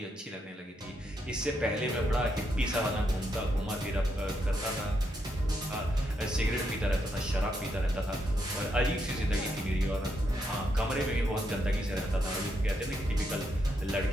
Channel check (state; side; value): normal; both; correlation 0.79